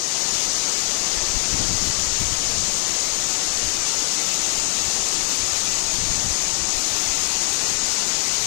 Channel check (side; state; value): right; silent; digital silence